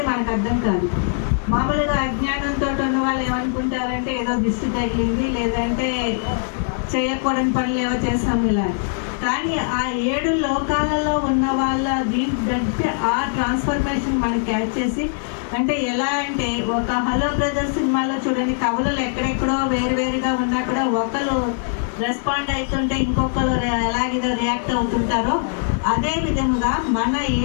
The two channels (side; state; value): right; silent; digital silence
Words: మనకు అర్థం కాదు. మామూలుగా అజ్ఞానంతో ఉన్న వాళ్ళు ఏమనుకుంటారంటే ఏదో దిష్టి తగిలింది, లేదంటే చేయకూడని పనులు ఏవో చేస్తాము ఇలా. కానీ ఆ 7 లోకాలలో ఉన్న వాళ్ళ దీంట్లో ఆ ట్రాన్స్ఫర్మేషన్ మనం క్యాచ్ చేసి, అంటే ఎలా అంటే ఒక హలో బ్రదర్స్ సినిమాలో చూడండి, కవులు ఎక్కడెక్కడో వేరువేరుగా ఉన్నా కూడా ఒకరు రెస్పాండ్ అవుతుంటే ఇంకొకరు ఎలాగేదో రియాక్ట్ అవుతుంటారో అదే విధముగా మన